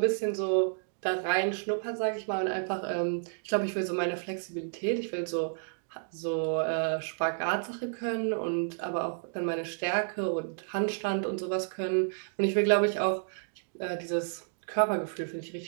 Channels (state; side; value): silent; left; digital silence